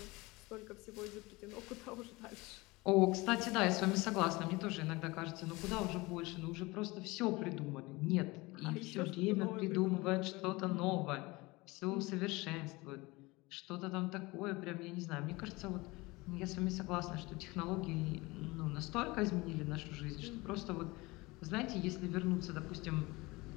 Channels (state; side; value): quieter; right; 22.8 dB